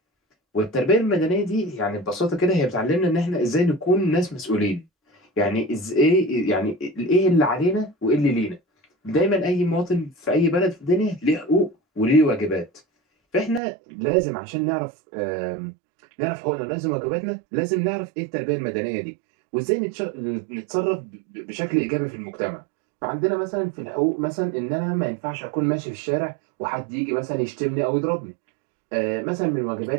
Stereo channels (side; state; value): left; drops out; at 13.6 s